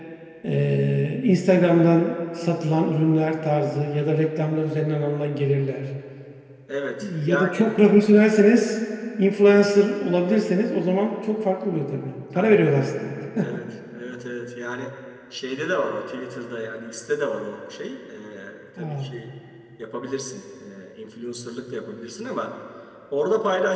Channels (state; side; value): identical; both; correlation 1.00